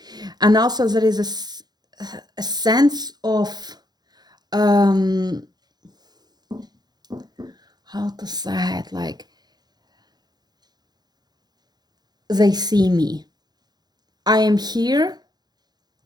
And also there is a sense of, how to say it, like, they see me. I am here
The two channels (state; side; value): late; left; 0.20 ms